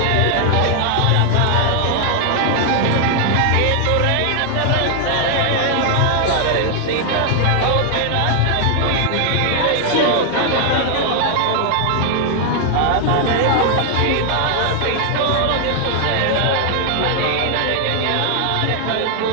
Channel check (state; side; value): different; both; correlation 0.00